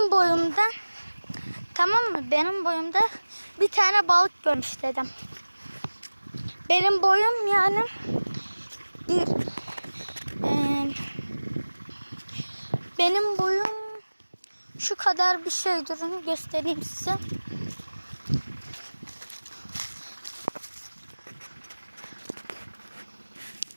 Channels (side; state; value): both; inverted; correlation -1.00